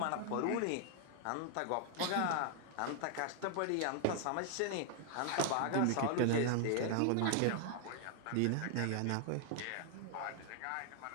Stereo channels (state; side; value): different; both; correlation 0.00